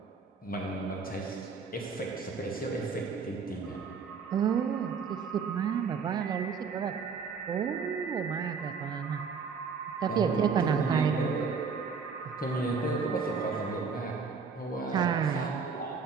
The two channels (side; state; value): left; quieter; 5.4 dB